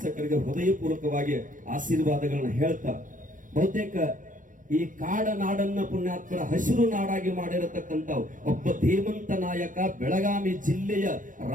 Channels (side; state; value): left; late; 0.38 ms